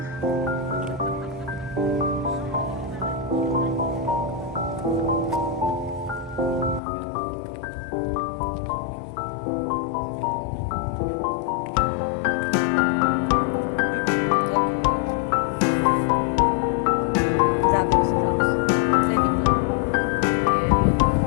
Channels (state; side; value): drops out; right; at 6.8 s